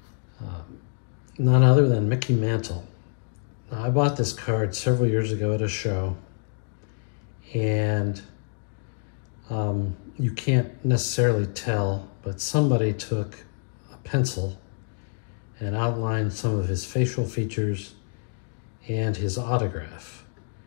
None other than Mickey Mantle. Now, I bought this card several years ago at a show, and you can't necessarily tell, but somebody took a pencil and outlined some of his facial features and his autograph.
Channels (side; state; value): right; silent; digital silence